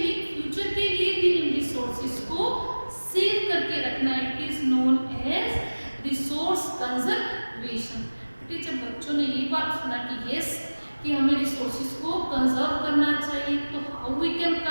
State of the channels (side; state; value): both; inverted; correlation -1.00